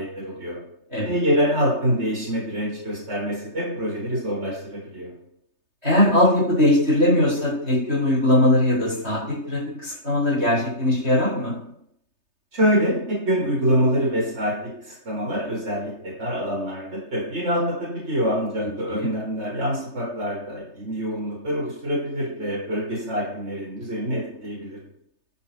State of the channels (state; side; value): late; left; 3.3 ms